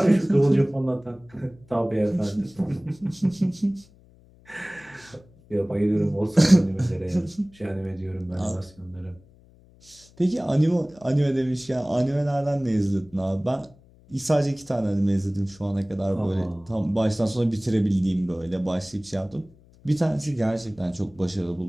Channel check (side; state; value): left; noise; hum, 27 dB below the sound